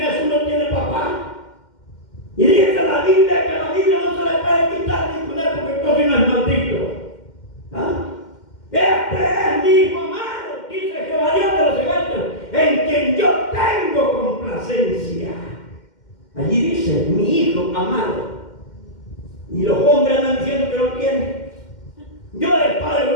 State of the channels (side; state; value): right; late; 2.1 ms